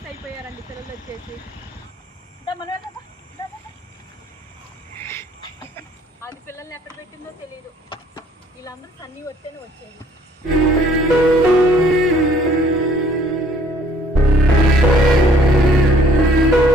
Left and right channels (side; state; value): both; normal; correlation 0.60